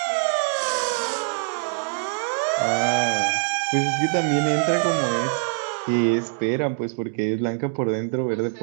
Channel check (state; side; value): silent; left; digital silence